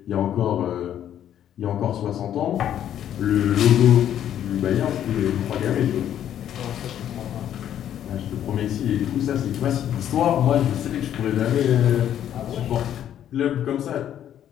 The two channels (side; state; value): right; quieter; 10.6 dB